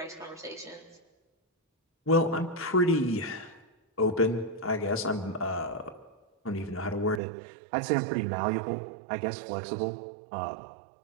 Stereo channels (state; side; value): drops out; left; at 7.2 s